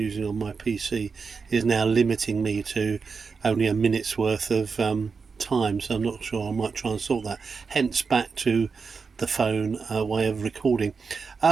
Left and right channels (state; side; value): quieter; left; 5.1 dB